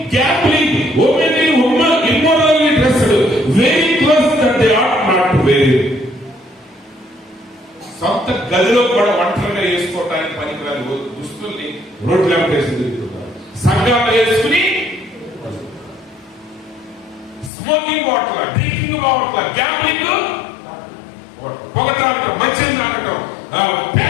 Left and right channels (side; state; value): right; drops out; at 17.5 s